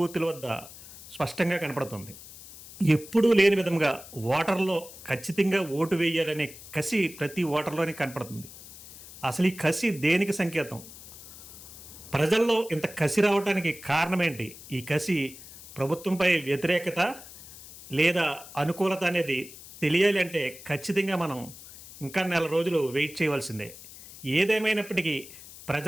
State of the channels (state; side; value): noise; left; hiss, 17 dB below the sound